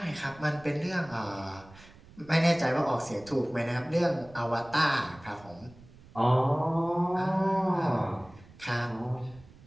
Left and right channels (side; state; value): right; noise; rumble, 23 dB below the sound